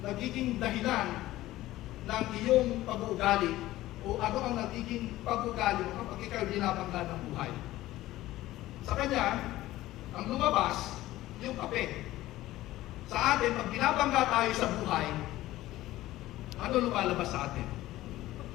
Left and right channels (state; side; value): quieter; right; 16.1 dB